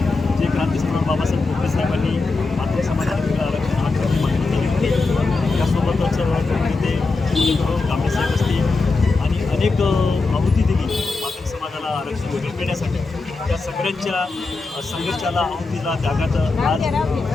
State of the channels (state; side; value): quieter; right; 3.8 dB